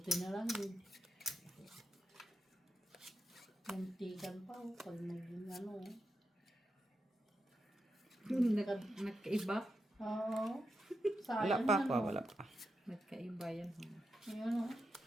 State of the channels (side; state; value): both; normal; correlation 0.87